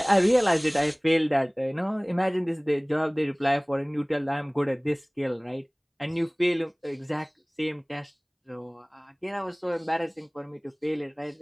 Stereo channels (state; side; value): identical; both; correlation 1.00